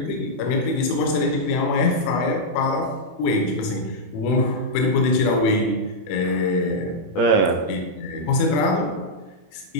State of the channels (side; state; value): right; late; 21 ms